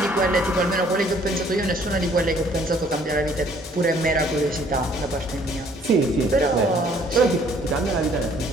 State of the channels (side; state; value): both; normal; correlation 0.60